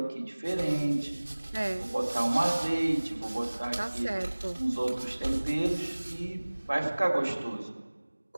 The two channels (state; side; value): inverted; both; correlation -1.00